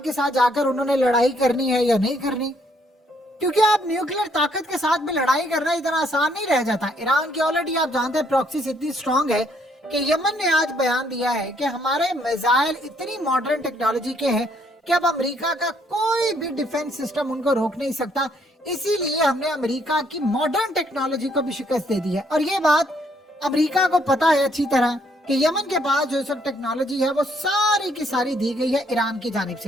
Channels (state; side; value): normal; both; correlation 0.69